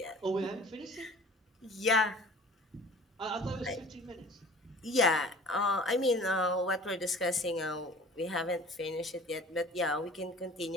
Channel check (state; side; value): normal; both; correlation 0.46